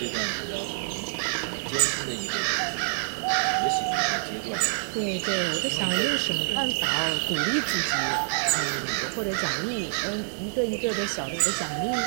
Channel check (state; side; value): silent; left; digital silence